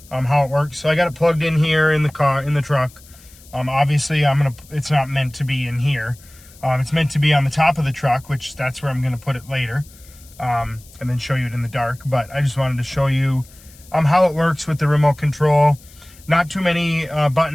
how it works. So I got it plugged in here in the car, in the truck. Obviously it's not meant to be in here. It's meant to be on the top of the truck, which that's where I'm gonna put it later, and then show you it in the dark. But I just wanted to show you how it works with the remote control. Not too many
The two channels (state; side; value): noise; left; hiss, 24 dB below the sound